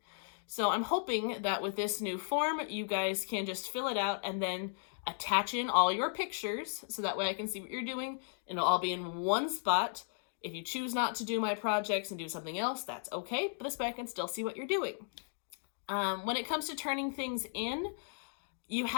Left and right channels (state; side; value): silent; right; digital silence